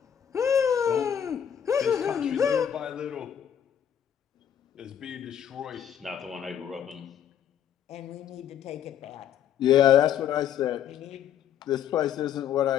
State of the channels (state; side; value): quieter; right; 9.3 dB